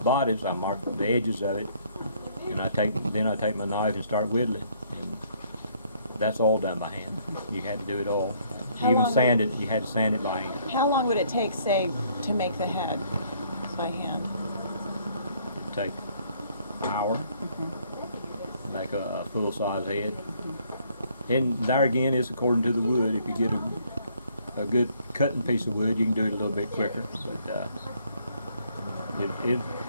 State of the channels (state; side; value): inverted; both; correlation -0.64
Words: bodies. I mark the edges of it, and then I take my knife and start whittling. And that's all done by hand. You had to do it all. You had to sand it by hand. How long would it take, say, to make the head by hand? It'd take an hour, make a full-size head. And there again, it's according to the wood. If you get a good cutting piece of wood, you can do it a little bit quicker. But